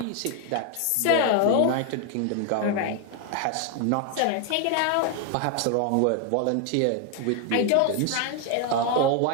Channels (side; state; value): both; different; correlation 0.01